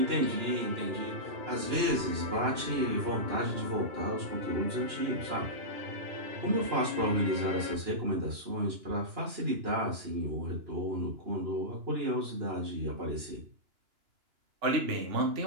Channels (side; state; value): left; late; 2.9 ms